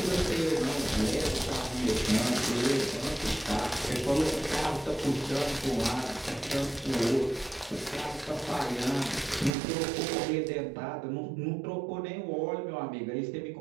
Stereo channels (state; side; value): drops out; left; at 9.5 s